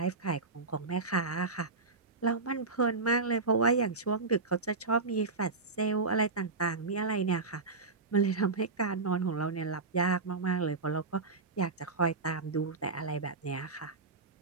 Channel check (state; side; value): quieter; left; 3.9 dB